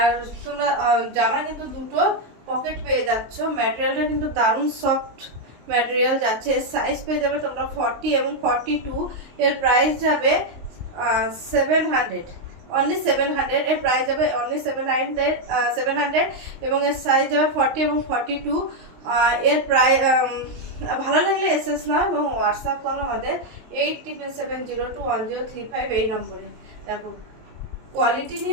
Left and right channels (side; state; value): left; late; 23 ms